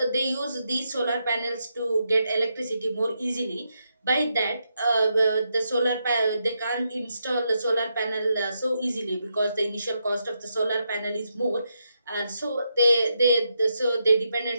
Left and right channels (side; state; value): both; inverted; correlation -0.82